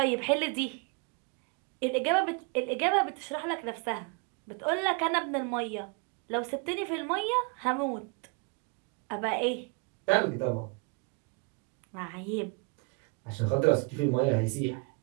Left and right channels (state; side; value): quieter; left; 30.6 dB